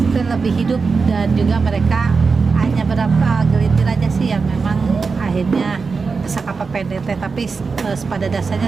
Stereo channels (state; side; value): quieter; left; 4.7 dB